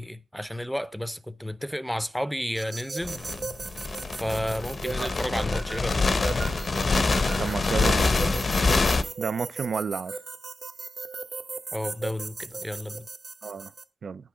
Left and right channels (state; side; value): normal; both; correlation 0.92